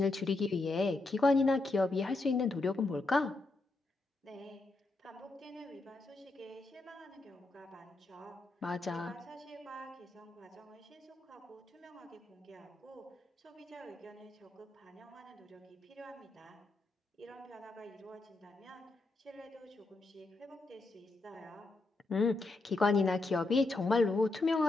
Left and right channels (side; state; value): right; quieter; 3.2 dB